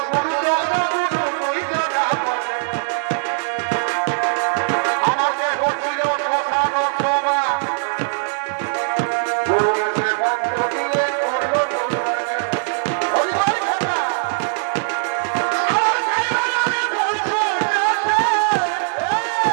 গুরু, চল গো গুরু, দুইজনা বলে আমাকে ঘটিল শ্মশান সভা, গুরু এসে মন্ত্র দিয়ে করল দুর্গা। হরি বল খাতা আমার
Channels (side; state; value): left; silent; 65 dB below the other